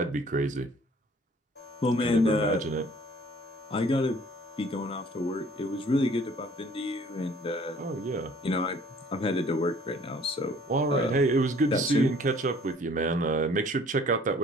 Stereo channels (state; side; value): normal; both; correlation 0.55